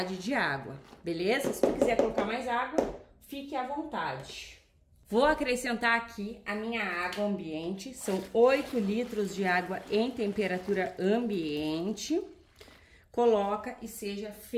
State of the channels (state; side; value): identical; both; correlation 1.00